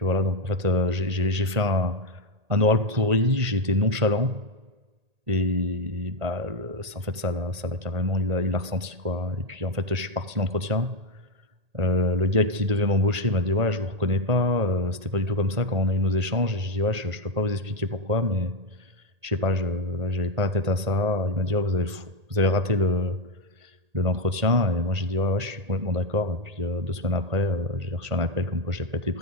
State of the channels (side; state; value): left; late; 1.8 ms